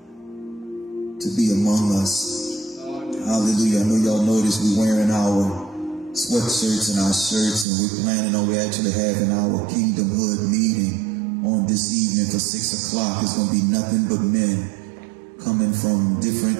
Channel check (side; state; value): left; drops out; at 7.7 s